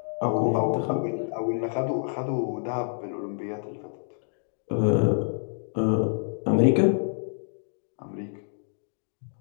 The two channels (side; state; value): right; silent; digital silence